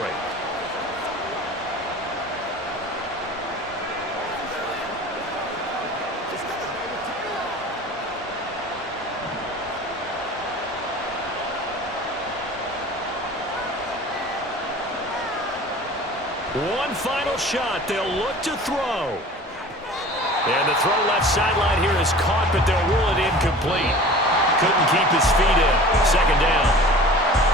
One final shot. They'll look to throw. And the throw left sideline here is caught, but they'll rule it incomplete. Couldn't keep his feet in. 2nd down.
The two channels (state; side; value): normal; both; correlation 0.42